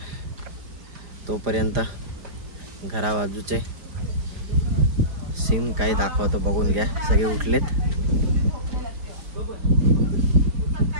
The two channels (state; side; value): late; left; 4.9 ms